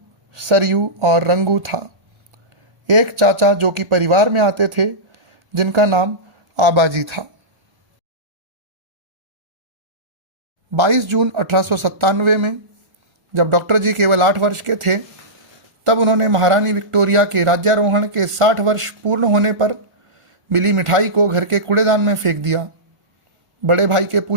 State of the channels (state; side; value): late; left; 1.1 ms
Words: सरयू और रंगू था। एक चाचा जो कि परिवार में आते थे, जिनका नाम आबाजी था। 22 जून 1897 में जब डॉक्टर जी केवल 8 वर्ष के थे, तब उन्होंने महारानी विक्टोरिया के राज्यारोहण के 60 वर्ष पूर्ण होने पर मिली मिठाई को घर के कूड़ेदान में फेंक दिया। बड़े भाई के